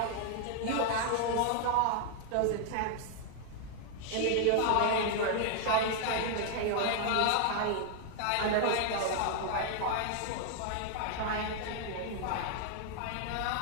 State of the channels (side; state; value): both; different; correlation 0.00